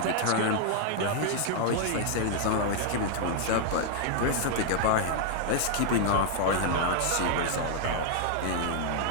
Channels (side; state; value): both; different; correlation 0.00